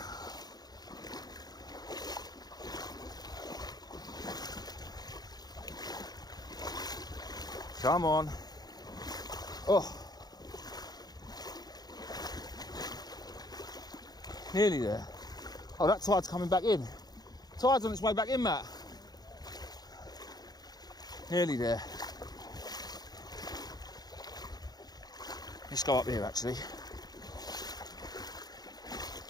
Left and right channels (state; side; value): late; right; 0.19 ms